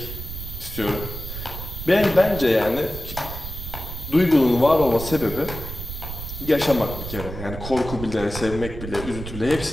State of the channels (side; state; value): right; noise; rumble, 9 dB below the sound